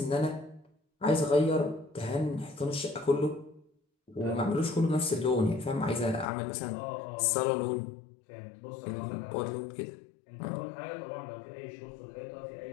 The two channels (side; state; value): right; drops out; at 6.2 s